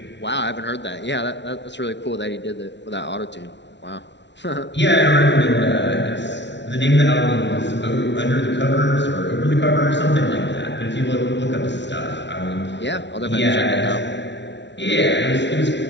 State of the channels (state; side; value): late; right; 0.51 ms